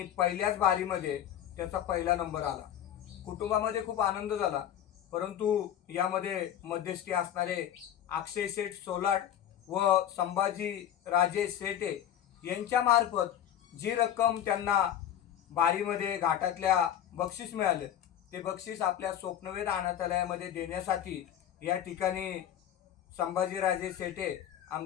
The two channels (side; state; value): right; quieter; 10.6 dB